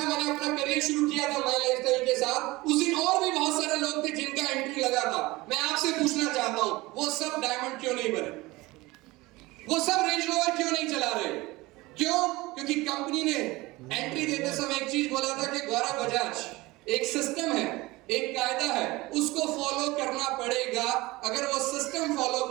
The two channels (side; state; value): left; quieter; 20.9 dB